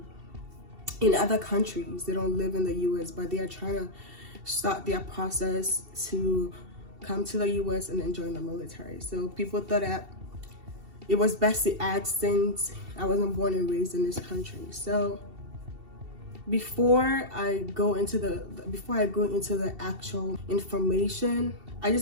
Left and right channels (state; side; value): late; left; 2.7 ms